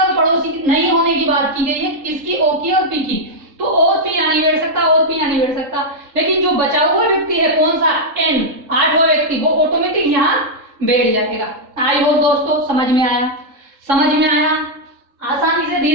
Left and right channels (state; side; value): late; left; 3.7 ms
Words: पड़ोसी नहीं होने की बात की गई है, किसकी, ओ की और पी की। तो और पी यहाँ नहीं बैठ सकता, और पी यहाँ नहीं बैठ सकता, लेकिन जो बचा हुआ व्यक्ति है कौन सा, एन, 8वां व्यक्ति, वो ऑटोमेटिक यहाँ बैठ जाएगा। आई होप दोस्तों समझ में आया, समझ में आया, आसानी से